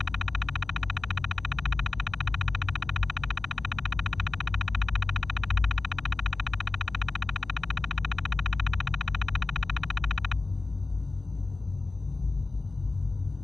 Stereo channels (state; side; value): quieter; right; 3.4 dB